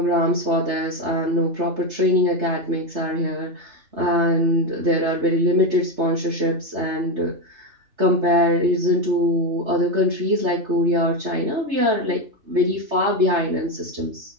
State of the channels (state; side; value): late; left; 3.3 ms